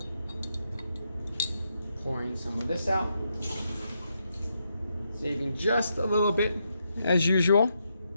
Pouring some of this out. Saving just a little bit, as usual,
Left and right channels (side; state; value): both; inverted; correlation -0.81